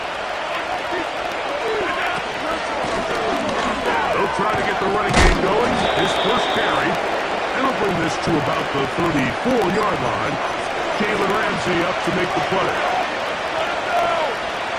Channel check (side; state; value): both; identical; correlation 1.00